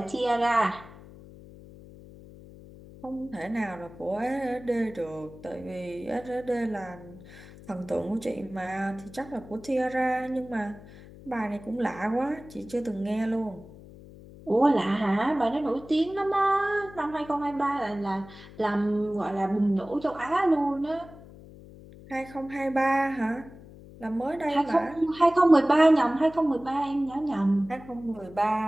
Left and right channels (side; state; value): left; noise; hum, 19 dB below the sound